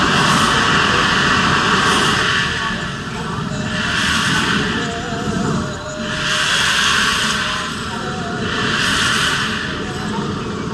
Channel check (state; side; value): identical; both; correlation 1.00